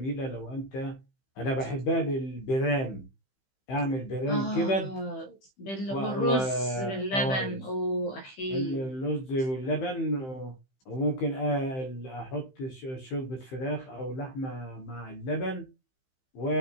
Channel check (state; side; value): late; right; 15 ms